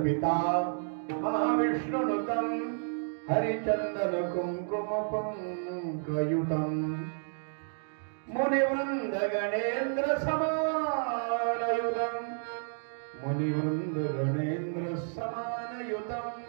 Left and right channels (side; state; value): left; silent; digital silence